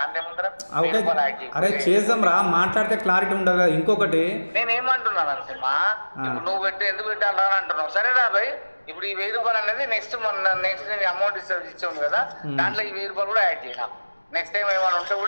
ఏముంటారా. అరే చేద్దాం రా, మాట్లాడితే క్లారిటీ ఉండదు కదా. ఇంకొకటి నేనేమంటున్నాను నరసింహ, ఇప్పుడు నువ్వు పెట్టి ఎందుకు పెట్టాలా అని అంటున్నావు. సరే రా భయ్, ఇప్పుడు ఈ 1000 రూపాయలు అనేది నెక్స్ట్ అమౌంట్ ఇచ్చాము కదా, దాంట్లో ఈ 1000 రూపాయలు కూడా యాడ్ చేయనా. నెక్స్ట్ టైం ఏమైనా ఉంటే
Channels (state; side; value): inverted; both; correlation -1.00